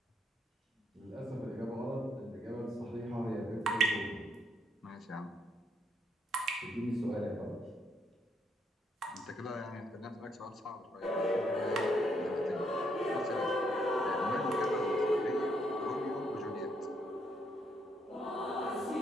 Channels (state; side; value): normal; both; correlation 0.73